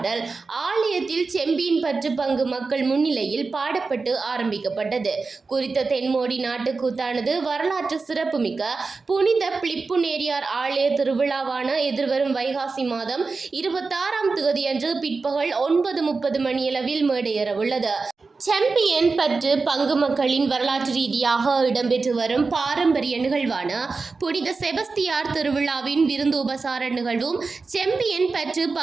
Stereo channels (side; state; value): left; quieter; 4.2 dB